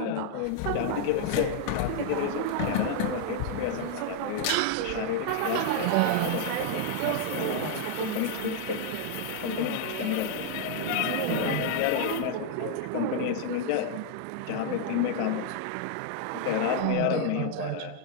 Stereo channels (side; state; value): both; different; correlation 0.00